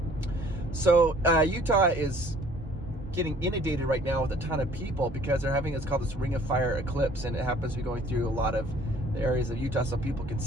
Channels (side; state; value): both; normal; correlation 0.55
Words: So Utah is getting inundated right now with a ton of people because they're having what's called this Ring of Fire eclipse, and it happens to be going through a lot of the areas of Utah, so people can